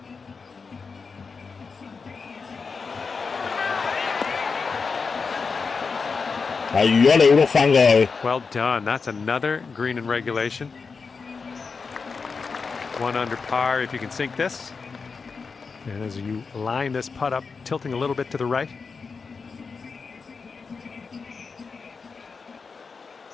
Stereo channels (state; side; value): quieter; right; 4.9 dB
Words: 係如果你碌翻過去， Well done. That's another green in regulation. 1 under par if you can sink this. And as you line this putt up, tilting a little bit to the right.